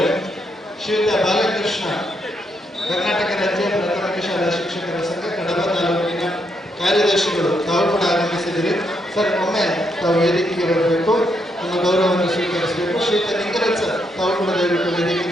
ಶ್ರೀಯುತ ಬಾಲಕೃಷ್ಣ, ಕರ್ನಾಟಕ ರಾಜ್ಯ ಪ್ರಾಥಮಿಕ ಶಾಲಾ ಶಿಕ್ಷಕರ ಸಂಘ ಕಡಬ ತಾಲೂಕಿನ ಕಾರ್ಯದರ್ಶಿಗಳು, ತಾವು ಕೂಡ ಆಗಮಿಸಿದಿರಿ. ಸರ್, ಒಮ್ಮೆ ತಾವು ವೇದಿಕೆಗೆ ಬರಬೇಕು, ನಮ್ಮ ಗೌರವವನ್ನು ಸ್ವೀಕರಿಸಬೇಕು. ಶ್ರೀಯುತ ಲಿಂಗರಾಜ್ ಸರ್, ತಾವು ಕೂಡ ದಯವಿಟ್ಟು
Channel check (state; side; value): normal; both; correlation 0.78